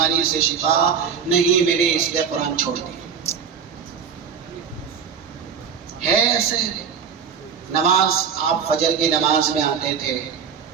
سے شفا نہیں ملی، اس لیے قرآن چھوڑ دیا. ہے ایسے. نماز آپ فجر کی نماز میں آتے تھے،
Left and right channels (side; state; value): left; quieter; 6.9 dB